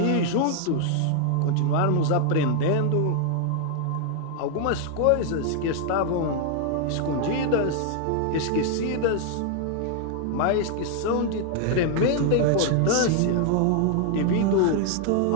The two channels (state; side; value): different; both; correlation 0.00